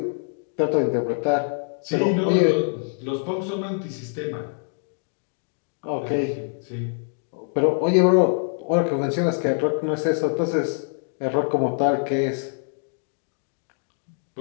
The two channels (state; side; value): silent; right; 62 dB below the other